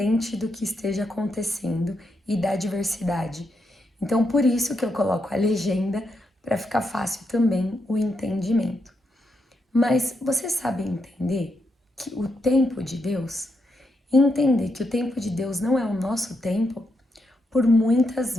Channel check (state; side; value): normal; both; correlation 0.82